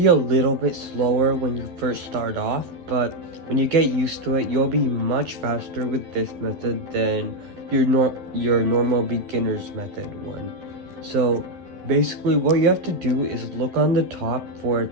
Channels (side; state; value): left; late; 12 ms